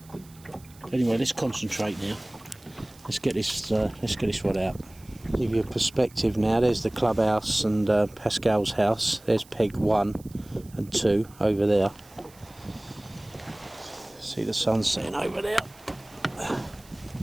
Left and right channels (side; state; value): right; noise; hiss, 25 dB below the sound